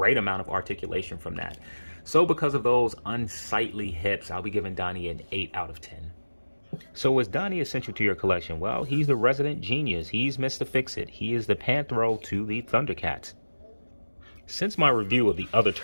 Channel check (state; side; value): inverted; both; correlation -1.00